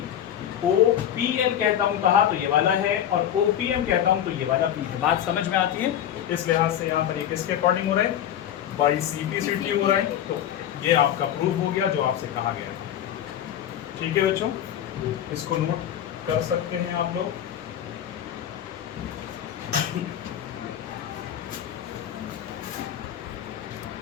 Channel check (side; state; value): right; quieter; 10.5 dB